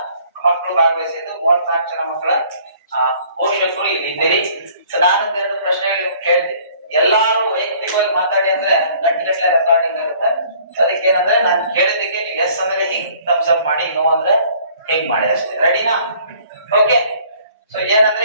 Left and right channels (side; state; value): both; inverted; correlation -0.56